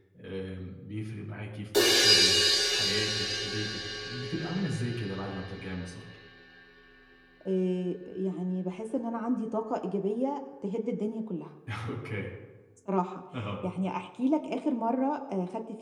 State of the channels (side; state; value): both; identical; correlation 1.00